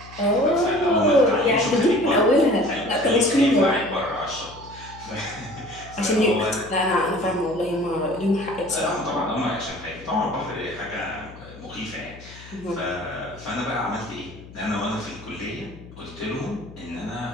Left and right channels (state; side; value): noise; left; hum, 18 dB below the sound